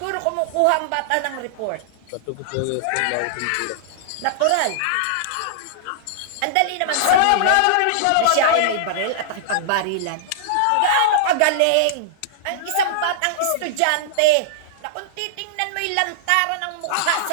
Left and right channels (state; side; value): different; both; correlation -0.02